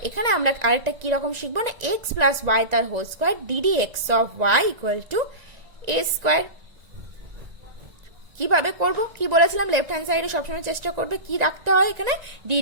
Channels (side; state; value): left; late; 1.9 ms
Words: এখানে আমরা আরেকটা কি রকম শিখবো না, এক্স প্লাস ওয়াই তার whole square DD x of y equal to a square. কিভাবে করবো, কি বলেছিলাম, লেফট হ্যান্ড সাইডে সবসময় চেষ্টা করবে কি রাখতে হয়, এখানে